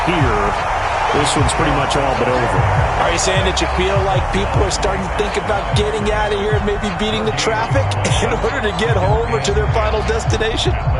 here, this one's pretty much all but over. Are you saying that you feel like people are starting to think about getting out of here and maybe beating the traffic in order to get home or to their final destination?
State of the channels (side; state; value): both; identical; correlation 1.00